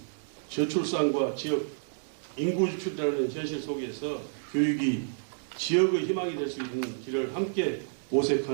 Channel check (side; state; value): left; silent; digital silence